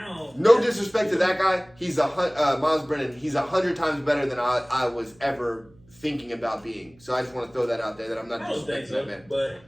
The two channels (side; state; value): right; noise; hum, 28 dB below the sound